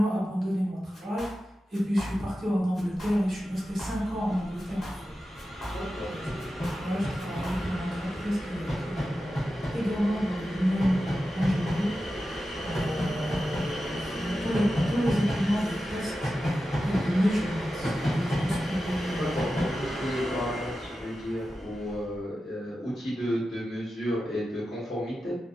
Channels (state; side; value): normal; both; correlation 0.92